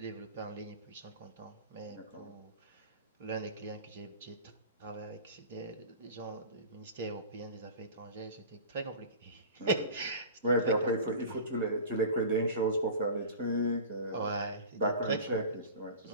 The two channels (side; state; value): both; inverted; correlation -0.35